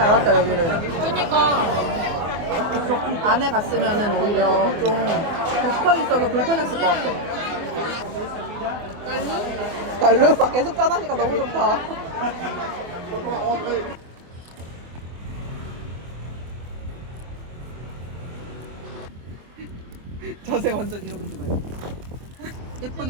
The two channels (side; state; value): left; late; 24 ms